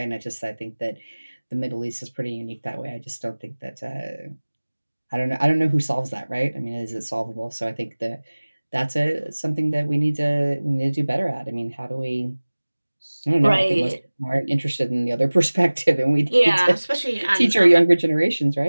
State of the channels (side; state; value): both; inverted; correlation -1.00